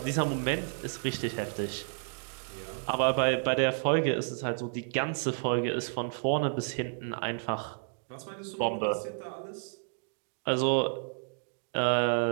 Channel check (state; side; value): silent; left; digital silence